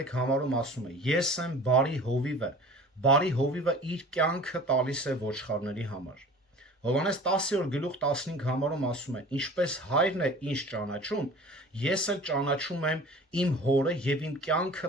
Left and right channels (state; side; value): normal; both; correlation 0.42